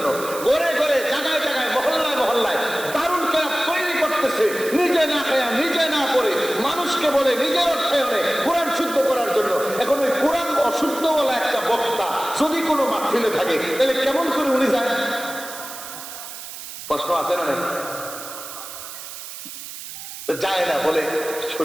ঘরে ঘরে জায়গায় জায়গায় মহল্লায় মহল্লায় দারুল কেরাত তৈরি করতেছে, নিজে না খায়া নিজে না করে মানুষকে বলে নিজের অর্থায়নে কোরআন শুদ্ধ করার জন্য। এখন ওই কোরআন অশুদ্ধ বলা একটা বক্তা যদি কোনো মাহফিলে থাকে, তাহলে কেমন করে উনি যায়? প্রশ্ন আছে না? নাই? যায় না, বলে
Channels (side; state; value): right; noise; hiss, 11 dB below the sound